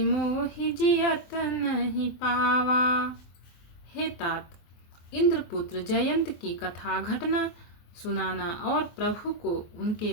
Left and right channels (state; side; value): late; right; 23 ms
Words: मोहि जियत नहीं पावा। हे तात, इंद्रपुत्र जयंत की कथा घटना सुनाना और प्रभु को